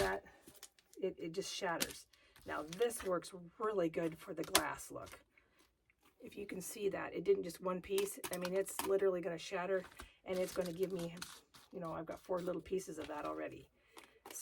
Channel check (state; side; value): identical; both; correlation 1.00